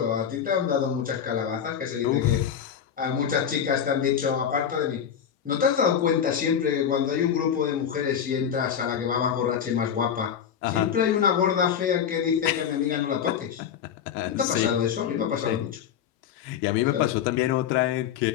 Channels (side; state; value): right; quieter; 8.4 dB